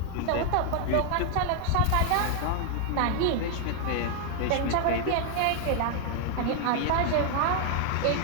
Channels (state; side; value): different; both; correlation 0.00